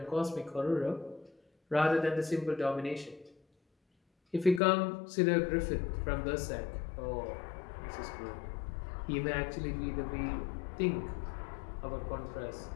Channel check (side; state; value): right; drops out; at 4.6 s